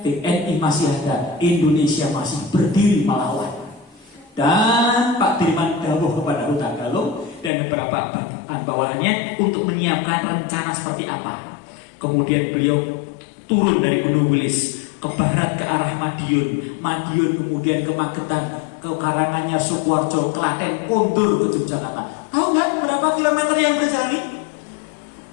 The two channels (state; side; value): drops out; right; at 7.5 s